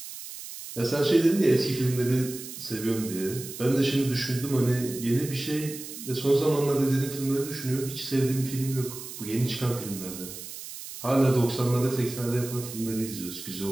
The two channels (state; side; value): noise; right; hiss, 11 dB below the sound